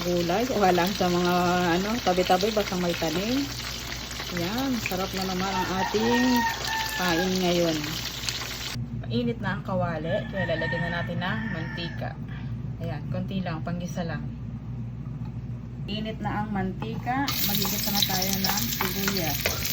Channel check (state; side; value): identical; both; correlation 1.00